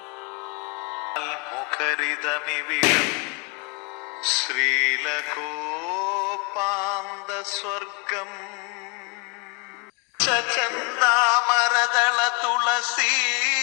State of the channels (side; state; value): right; quieter; 32.2 dB